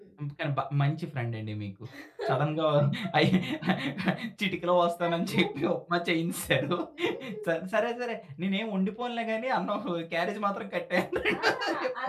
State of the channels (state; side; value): identical; both; correlation 1.00